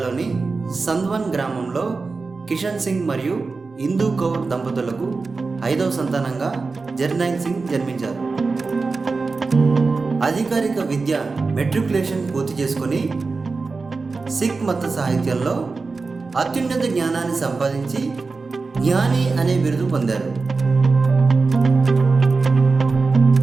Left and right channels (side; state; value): left; quieter; 4.1 dB